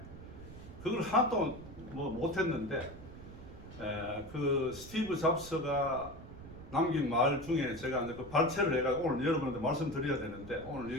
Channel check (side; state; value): right; noise; rumble, 15 dB below the sound